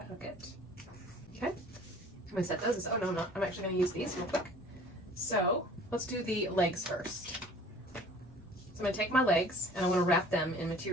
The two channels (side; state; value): left; noise; rumble, 26 dB below the sound